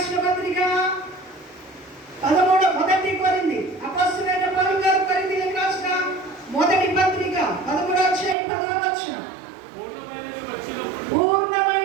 పత్రిక 13 మొదటి కొరింథీ అపొస్తలుడైన పౌలు గారు కొరింథీయులకు రాసిన మొదటి పత్రిక 13వ అధ్యాయం 10వ వచనం.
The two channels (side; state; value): left; drops out; at 8.3 s